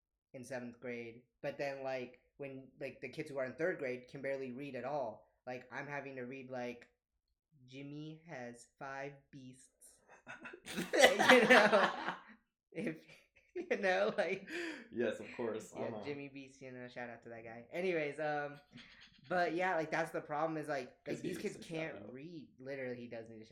in 7th grade. But then like when like the kids who are in 3rd grade can barely read at all. Like I'm having to read like Jimmy has 5 beasts. You know, if you know, like yes, of course. yeah, Jimmy Beast. You know, shout out to that guy. Anyways, but yeah, like that's the problem is like these kids can't read. Literally, he does need a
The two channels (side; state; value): both; identical; correlation 1.00